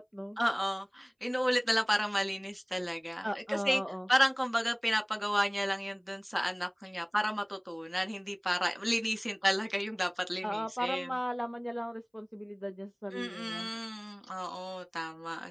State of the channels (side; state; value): both; identical; correlation 1.00